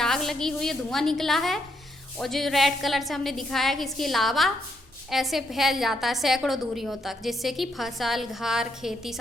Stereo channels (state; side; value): normal; both; correlation 0.77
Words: लगी हुई है, धुआं निकला है। और जो रेड कलर से हमने दिखाया कि इसकी लावा ऐसे फैल जाता है सैकड़ों दूरियों तक, जिससे कि फसल, घर, खेती